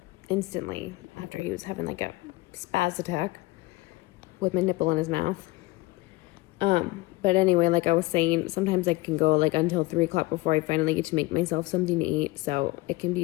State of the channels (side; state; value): right; quieter; 22.1 dB